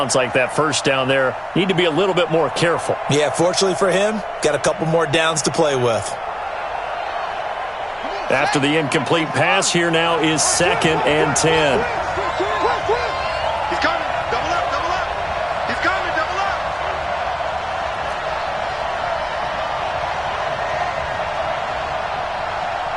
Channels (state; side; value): identical; both; correlation 1.00